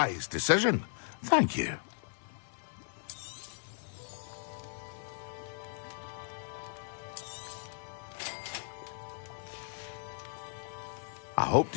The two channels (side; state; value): right; silent; 54 dB below the other